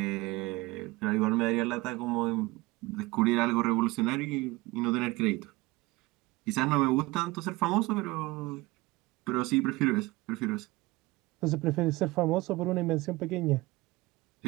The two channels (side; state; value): left; quieter; 21.1 dB